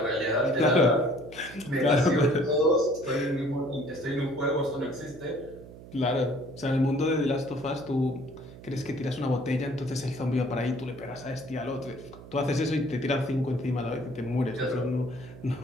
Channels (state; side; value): noise; right; hum, 17 dB below the sound